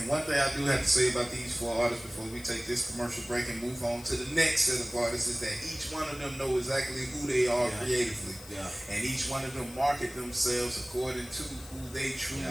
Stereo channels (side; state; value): left; noise; hiss, 18 dB below the sound